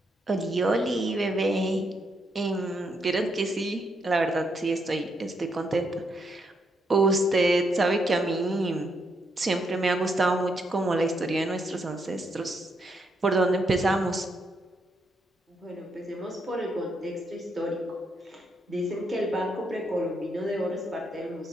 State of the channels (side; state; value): both; normal; correlation 0.77